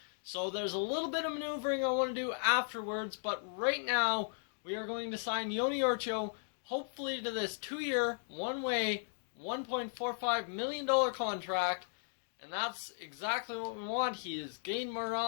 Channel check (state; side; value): silent; right; digital silence